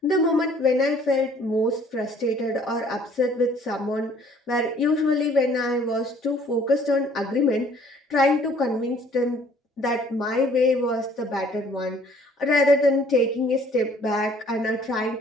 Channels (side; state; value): both; normal; correlation 0.57